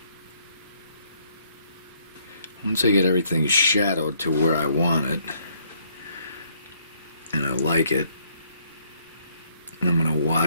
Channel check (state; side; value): inverted; both; correlation -0.68